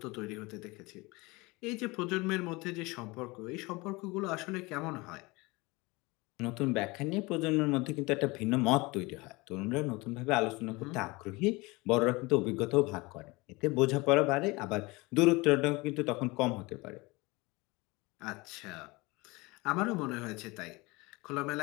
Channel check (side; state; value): right; quieter; 24.0 dB